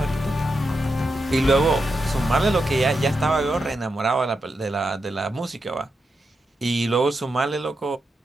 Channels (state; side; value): normal; both; correlation 0.86